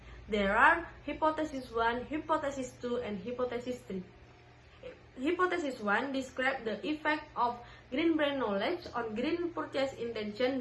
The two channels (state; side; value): identical; both; correlation 1.00